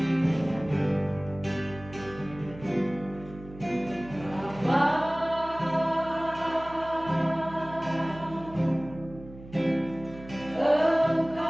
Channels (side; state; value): right; noise; hum, 17 dB below the sound